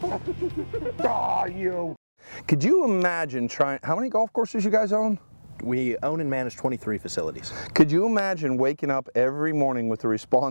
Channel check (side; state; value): both; inverted; correlation -1.00